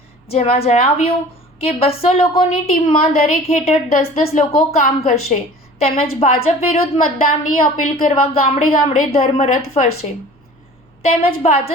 જેમાં જણાવ્યું કે 200 લોકોની ટીમમાં દરેક હેઠળ 10-10 લોકો કામ કરશે તેમજ ભાજપ વિરુદ્ધ મતદાનની અપીલ કરવા ગામડે ગામડે ધર્મરથ ફરશે તેમજ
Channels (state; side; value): normal; both; correlation 0.44